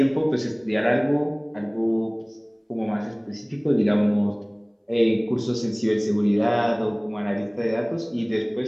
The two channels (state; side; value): identical; both; correlation 1.00